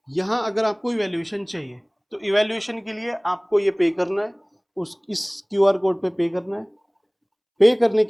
यहाँ अगर आपको इवैल्यूएशन चाहिए तो इवैल्यूएशन के लिए आपको ये पे करना है, इस क्यूआर कोड पे पे करना है। पे करने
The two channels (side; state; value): both; identical; correlation 1.00